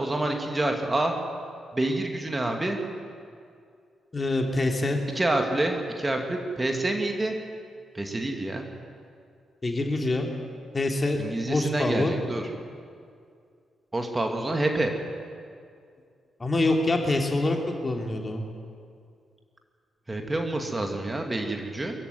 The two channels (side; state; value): both; normal; correlation 0.89